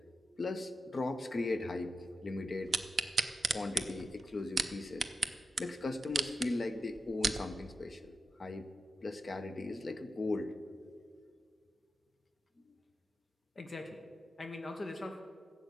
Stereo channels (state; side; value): normal; both; correlation 0.90